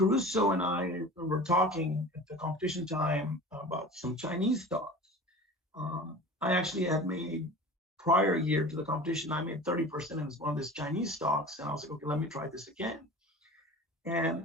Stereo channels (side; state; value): both; normal; correlation 0.38